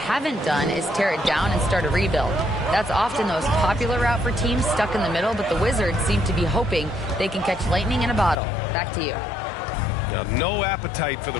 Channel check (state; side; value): drops out; right; at 8.4 s